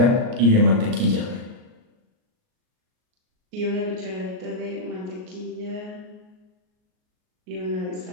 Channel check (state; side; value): late; left; 38 ms